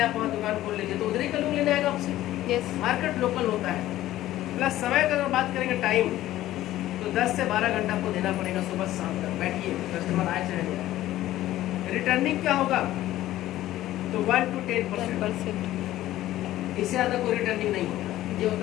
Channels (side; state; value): right; quieter; 14.6 dB